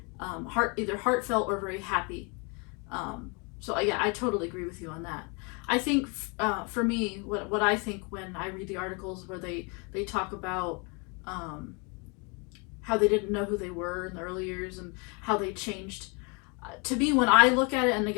either heartfelt or very happy. So yeah, I totally agree with you on that. I think for me, what I think when I read the articles where they talk about how they didn't know who they were in the early years and how they changed. To me, when I look at it, and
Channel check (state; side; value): quieter; right; 32.5 dB